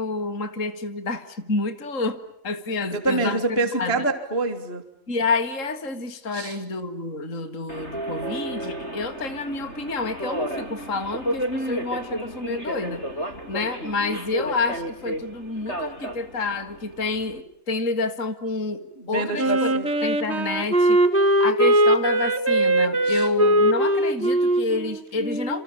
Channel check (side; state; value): right; late; 3.7 ms